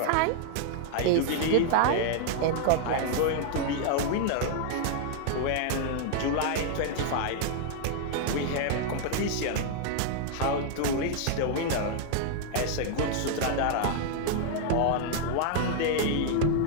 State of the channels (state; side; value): different; both; correlation 0.00